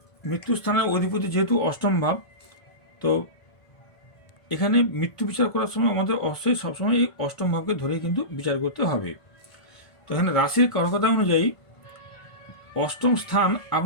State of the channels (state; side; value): late; right; 1.5 ms